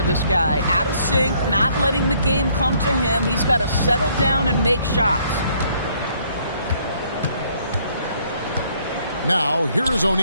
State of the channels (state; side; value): inverted; both; correlation -0.65